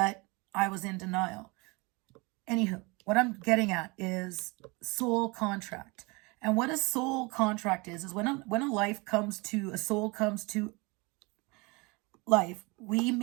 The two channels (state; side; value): quieter; left; 26.8 dB